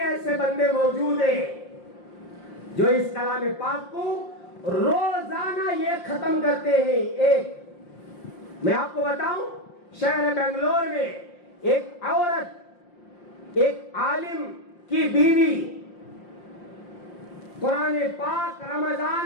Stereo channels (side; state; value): right; late; 5.7 ms